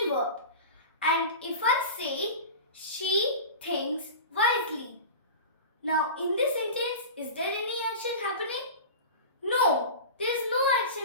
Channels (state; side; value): inverted; both; correlation -0.31